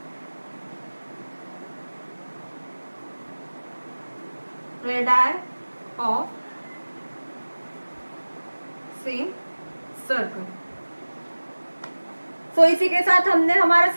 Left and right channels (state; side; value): inverted; both; correlation -1.00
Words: radii of same circle. So इसी के साथ हमने हमारा